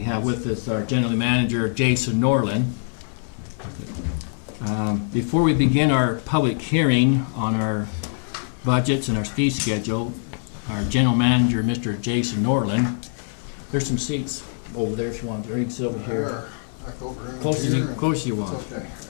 have with us our General Manager Jason Norland. Before we begin our public hearing on our budgets and our fee schedule, our General Manager, Mr. Jason Norland, there's some seats over there if you want to. You can sit over here. Close as you want. Okay.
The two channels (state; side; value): silent; right; digital silence